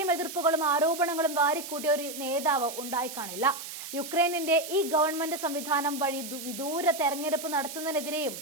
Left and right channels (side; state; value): right; noise; hiss, 10 dB below the sound